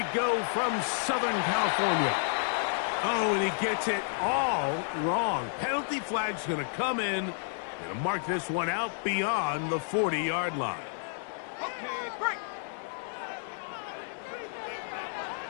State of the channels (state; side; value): silent; right; digital silence